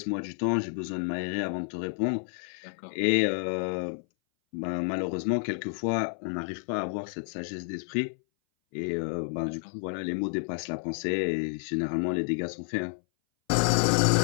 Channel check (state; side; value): silent; right; 58 dB below the other